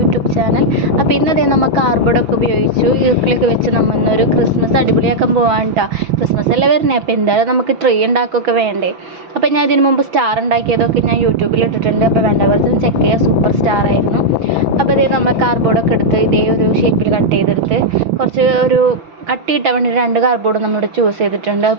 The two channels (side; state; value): left; late; 6.1 ms